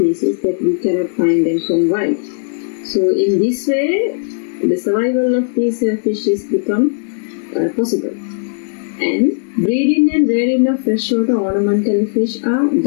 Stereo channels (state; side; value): silent; right; digital silence